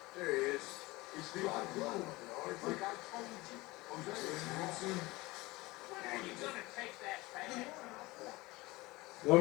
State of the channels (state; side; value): quieter; right; 21.4 dB